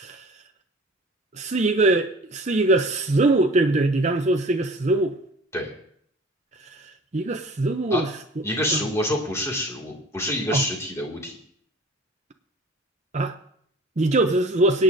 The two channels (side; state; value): both; normal; correlation 0.44